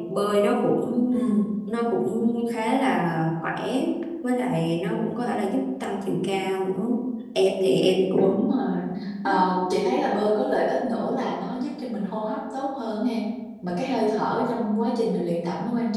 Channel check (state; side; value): identical; both; correlation 1.00